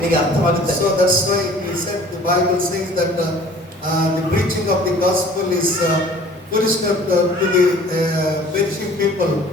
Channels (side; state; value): both; normal; correlation 0.49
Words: ಅರ್ಥವಾಗುತ್ತೆ. So that's why he said, the Bible says that the preaching of the gospel is foolishness to the perishing people,